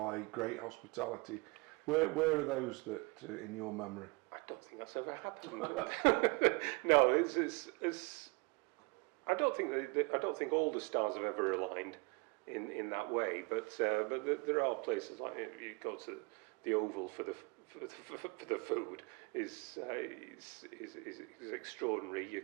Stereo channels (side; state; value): left; quieter; 28.6 dB